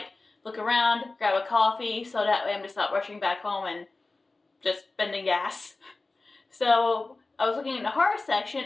look around, grab a coffee, so that way I'm just not rushing back home and just spending gas. So I was looking in the horror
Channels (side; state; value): right; quieter; 3.4 dB